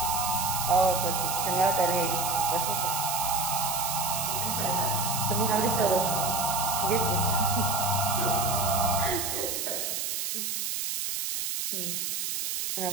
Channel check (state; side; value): noise; right; hiss, 2 dB below the sound